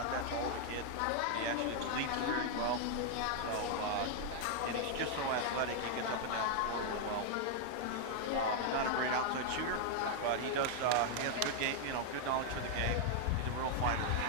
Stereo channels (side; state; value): both; different; correlation 0.00